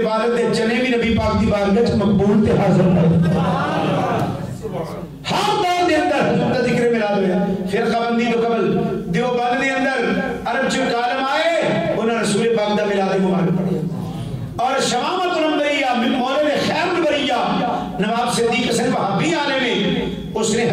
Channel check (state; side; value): identical; both; correlation 1.00